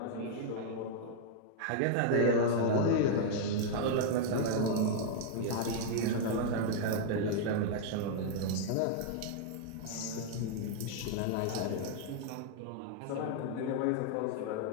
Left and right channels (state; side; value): different; both; correlation -0.01